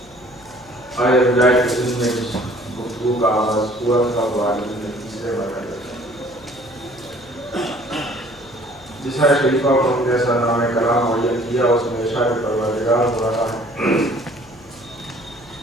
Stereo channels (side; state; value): left; noise; hum, 27 dB below the sound